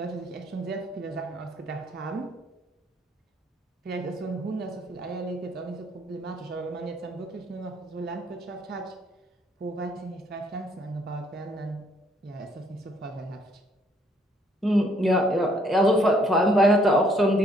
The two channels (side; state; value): both; normal; correlation 0.66